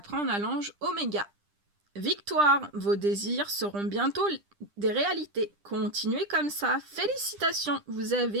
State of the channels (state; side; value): late; left; 10 ms